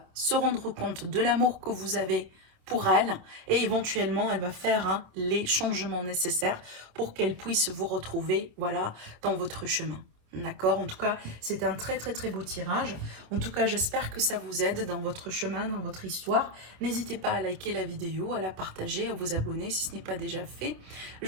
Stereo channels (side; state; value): left; late; 27 ms